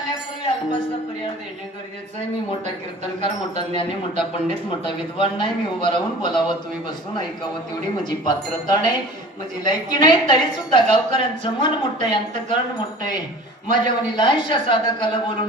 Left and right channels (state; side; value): normal; both; correlation 0.43